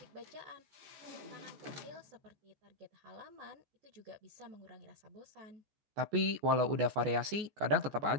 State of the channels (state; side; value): late; left; 14 ms